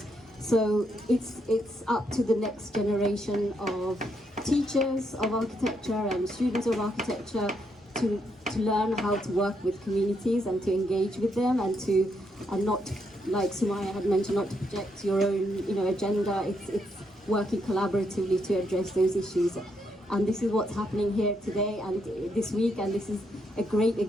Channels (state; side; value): normal; both; correlation 0.77